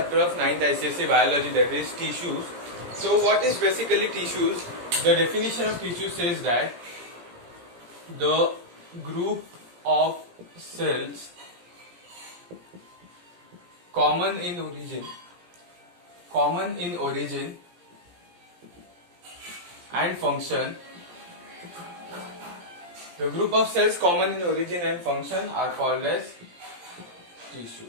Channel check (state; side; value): late; left; 17 ms